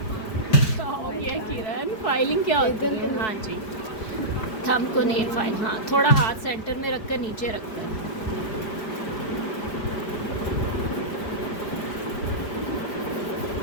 हो गया किरण, फाइलिंग क्या होती है? हाँ जी, थंब को नेल फाइल, हाँ थोड़ा हाथ सेंटर में रखकर नीचे रखकर।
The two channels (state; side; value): late; right; 4.8 ms